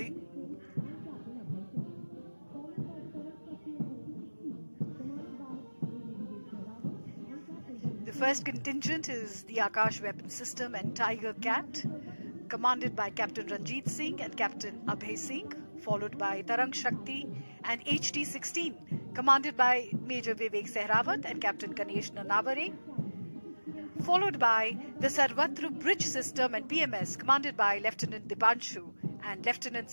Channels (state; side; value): inverted; both; correlation -1.00